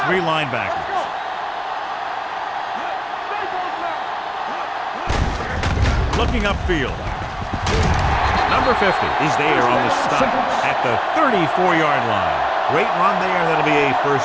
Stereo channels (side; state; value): both; identical; correlation 1.00